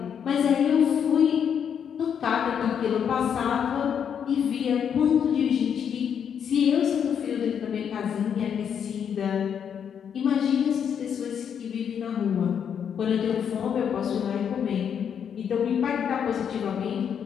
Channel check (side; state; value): right; quieter; 7.9 dB